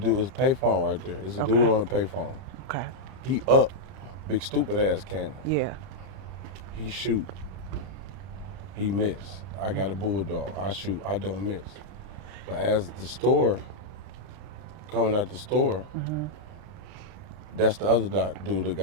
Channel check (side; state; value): left; late; 32 ms